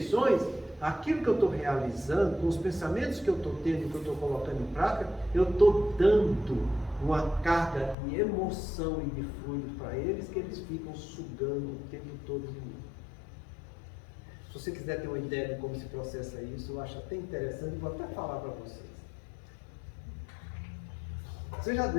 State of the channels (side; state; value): right; drops out; at 8.0 s